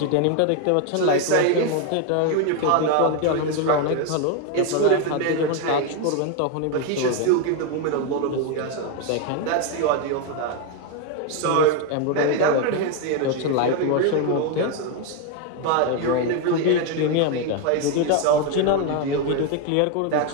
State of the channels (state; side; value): different; both; correlation 0.01